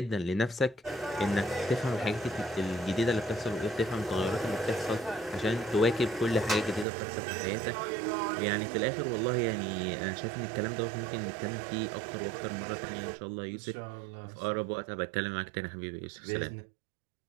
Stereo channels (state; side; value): drops out; left; at 6.9 s